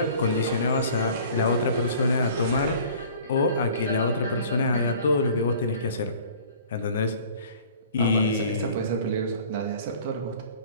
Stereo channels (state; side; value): inverted; both; correlation -0.48